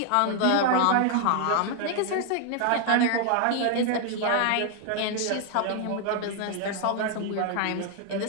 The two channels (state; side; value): different; both; correlation 0.00